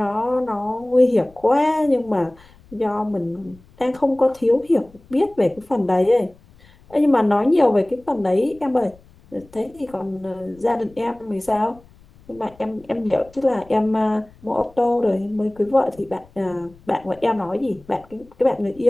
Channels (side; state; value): left; noise; rumble, 27 dB below the sound